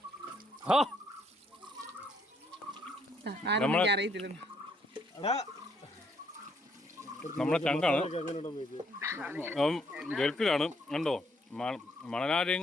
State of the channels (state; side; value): normal; both; correlation 0.70